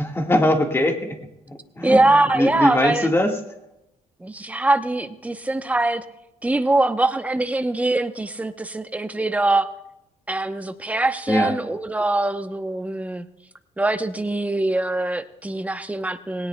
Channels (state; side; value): normal; both; correlation 0.87